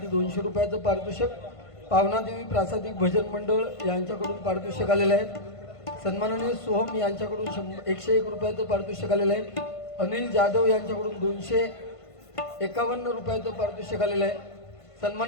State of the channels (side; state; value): right; late; 1.5 ms